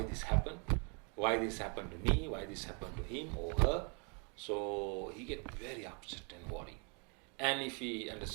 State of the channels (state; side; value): quieter; left; 35.9 dB